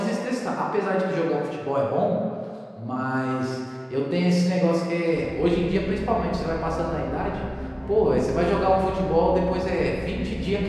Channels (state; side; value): identical; both; correlation 1.00